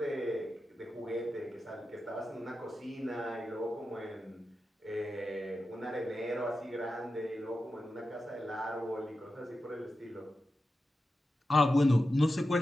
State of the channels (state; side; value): normal; both; correlation 0.91